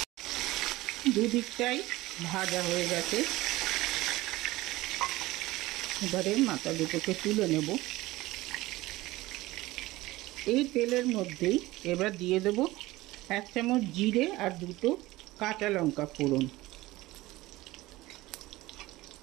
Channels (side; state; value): left; quieter; 18.6 dB